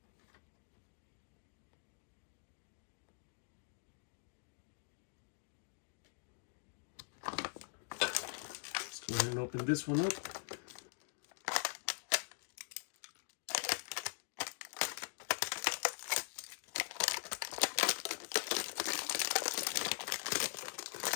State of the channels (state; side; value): silent; right; digital silence